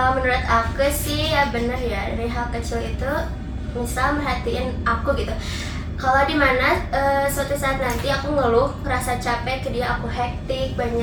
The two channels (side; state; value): both; identical; correlation 1.00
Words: menurut aku sih ya bener ya, dari hal kecil itu misal merhatiin aku gitu. Kalau dimana suatu saat nanti aku ngeluh, ngerasa capek ke dia, aku hektik,